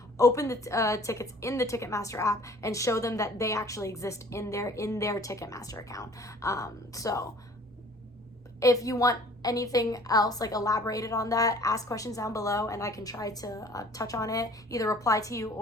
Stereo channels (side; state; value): both; normal; correlation 0.51